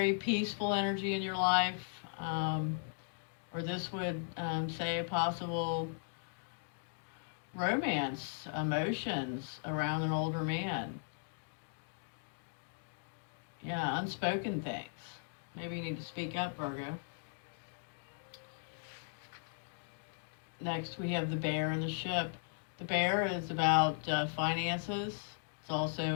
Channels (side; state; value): right; silent; digital silence